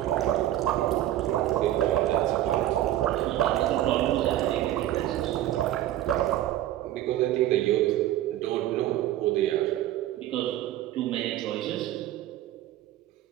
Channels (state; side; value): quieter; left; 13.6 dB